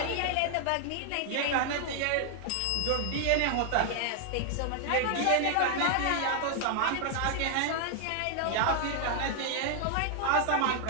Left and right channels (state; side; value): different; both; correlation 0.00